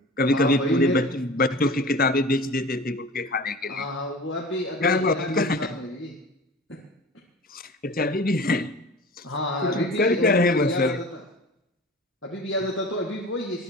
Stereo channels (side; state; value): both; normal; correlation 0.38